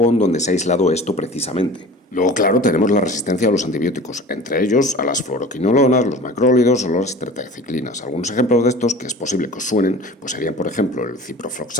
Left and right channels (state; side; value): normal; both; correlation 0.40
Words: donde se ha aislado esto precisamente. Luego, claro, tenemos la resistencia a los antibióticos, entre ellos a las fluoroquinolonas, los macrólidos o las tetraciclinas. Algunos ejemplos de estos que es posible que os suenen pues serían, por ejemplo, el